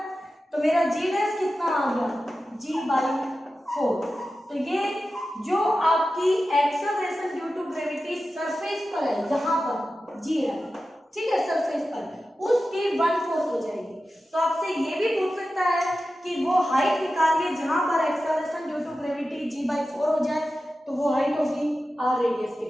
तो मेरा g डैश कितना आ गया, g बाई 4। तो ये जो आपकी acceleration due to gravity surface पर है, यहाँ पर g है, ठीक है, सरफेस पर, उसकी 1/4 हो जाएगी। तो आपसे ये भी पूछ सकता है कि वो हाइट निकालिए जहां पर acceleration due to gravity g by 4 हो जाए, तो वो हाइट होगी r रेडियस के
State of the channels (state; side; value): normal; both; correlation 0.93